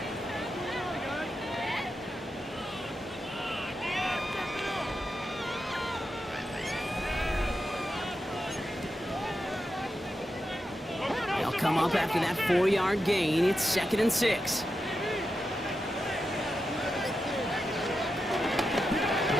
They'll come up after that 4-yard gain. It's 2nd and 6.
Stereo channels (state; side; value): normal; both; correlation 0.88